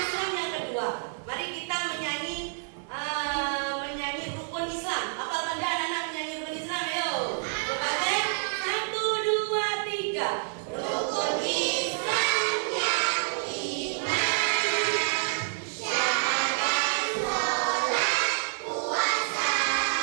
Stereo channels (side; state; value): left; silent; digital silence